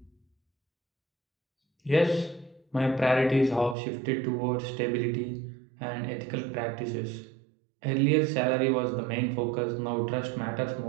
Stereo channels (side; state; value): left; drops out; at 3.8 s